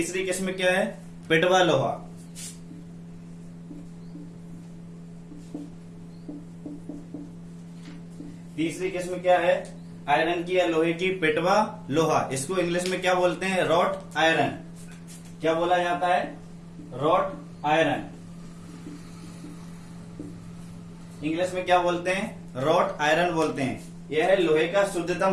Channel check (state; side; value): identical; both; correlation 1.00